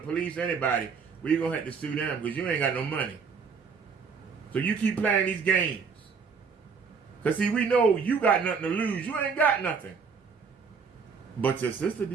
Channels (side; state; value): left; quieter; 5.6 dB